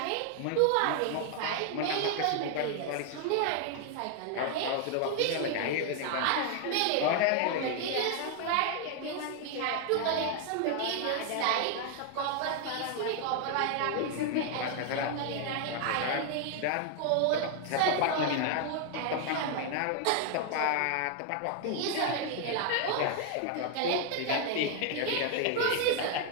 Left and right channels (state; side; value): different; both; correlation 0.00